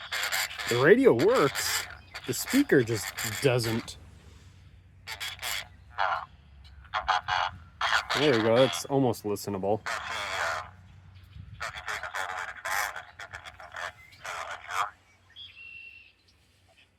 The radio works. The speaker just doesn't. There we go. That's almost listenable.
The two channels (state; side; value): identical; both; correlation 1.00